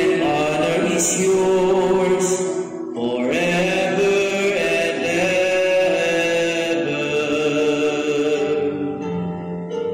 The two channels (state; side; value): identical; both; correlation 1.00